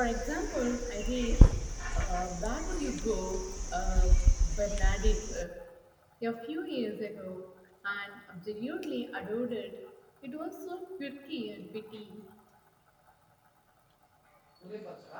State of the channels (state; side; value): identical; both; correlation 1.00